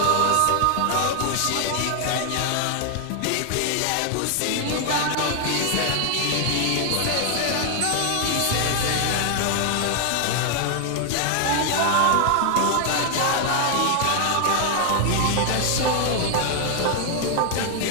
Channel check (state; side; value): different; both; correlation 0.00